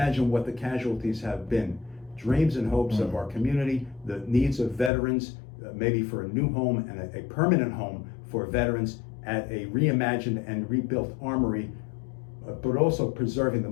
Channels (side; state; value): right; drops out; at 4.9 s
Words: what the casualties have been. Dreams and hopes of our community, the needs of veterans, maybe for a new home and a permanent home for veterans at a reimagined and rebuilt armory, but also preserving the